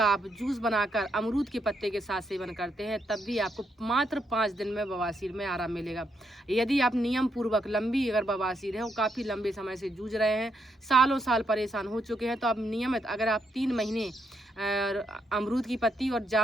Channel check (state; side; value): normal; both; correlation 0.78